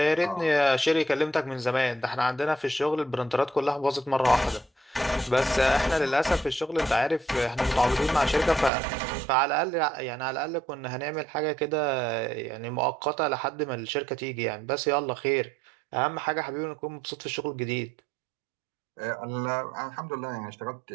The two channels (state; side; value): drops out; left; at 8.7 s